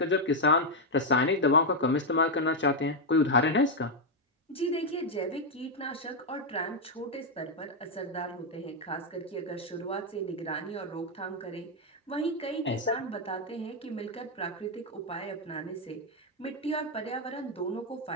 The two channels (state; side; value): normal; both; correlation 0.01